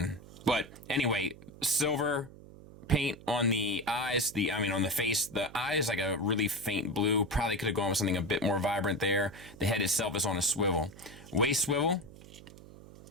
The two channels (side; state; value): right; noise; hum, 18 dB below the sound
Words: But anyway, silver paint on the eyes, on the face. The eye is like a really faint blue. Probably could have gone with something a bit more vibrant there. The head itself is on a swivel. Waist swivel